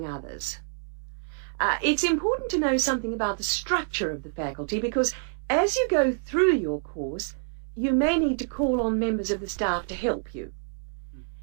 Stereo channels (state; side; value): silent; left; 60 dB below the other